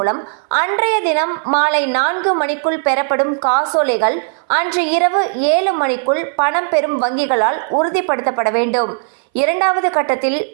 அன்றைய தினம் மாலை 4 மணிக்குள் பெறப்படும் காசோலைகள் அன்று இரவு 7 மணிக்குள் பணம் பெறும் வங்கிகளால் உறுதிப்படுத்தப்பட வேண்டும். 2வது கட்டத்தில்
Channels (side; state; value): left; silent; 62 dB below the other